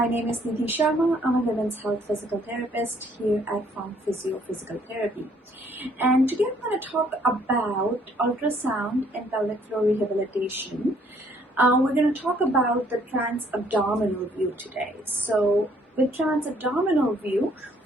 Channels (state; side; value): normal; both; correlation 0.64